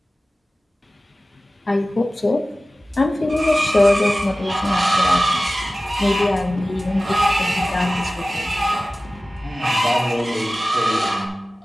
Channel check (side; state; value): both; normal; correlation 0.96